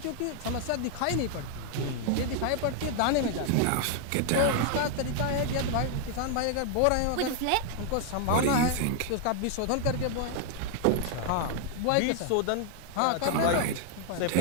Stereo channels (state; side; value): different; both; correlation 0.00